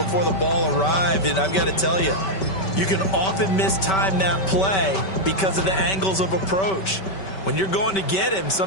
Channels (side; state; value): right; late; 5.2 ms